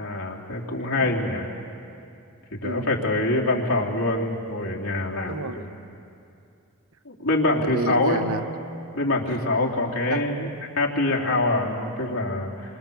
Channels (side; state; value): both; normal; correlation -0.08